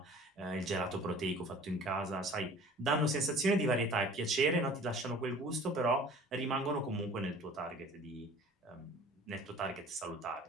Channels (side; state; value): both; normal; correlation 0.47